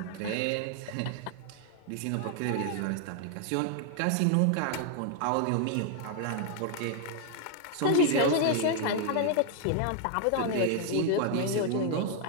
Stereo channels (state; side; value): different; both; correlation 0.00